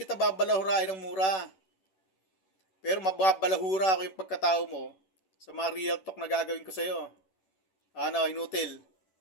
babalahurain ng mura. Pero mababalahura ako yung pagkatao mo sa mga real talk na gagawin ko sa'yo. Ano, inutil.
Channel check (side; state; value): right; late; 11 ms